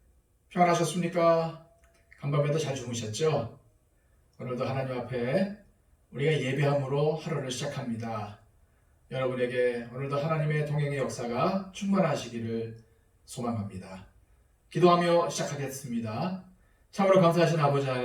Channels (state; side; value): identical; both; correlation 1.00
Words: 평안하셨습니까? 간밤에도 잘 주무셨죠? 오늘도 하나님 앞에 우리가 예배함으로 하루를 시작합니다. 여러분에게 오늘도 하나님의 동행의 역사가 충만하시기를 소망합니다. 기도하며 시작하겠습니다. 참으로 감사하신 아버지